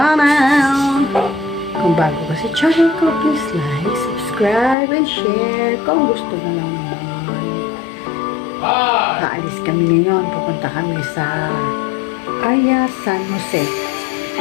Kung bago ka sa channel ko, please like, subscribe, and share. Kung gusto na lang naman. Aalis kami ngayon. Pupunta kami sa ARYA, San Jose.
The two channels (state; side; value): drops out; right; at 4.8 s